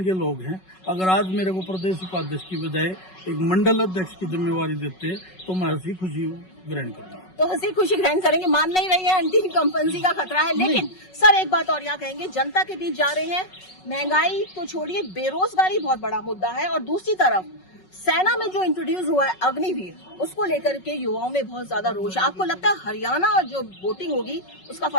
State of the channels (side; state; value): right; late; 5.4 ms